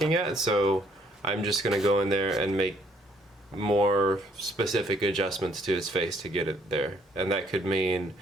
at, so I'm just gonna go in there and make more specific adjustments to his face to get it there. And that could mean,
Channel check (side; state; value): both; normal; correlation 0.66